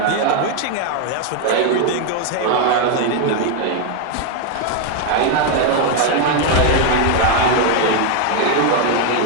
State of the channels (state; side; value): different; both; correlation 0.01